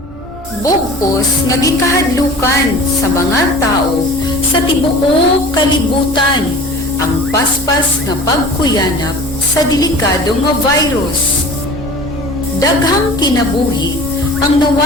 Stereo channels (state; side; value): normal; both; correlation 0.41